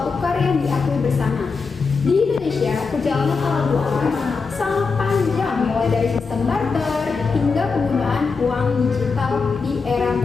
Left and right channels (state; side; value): quieter; right; 4.8 dB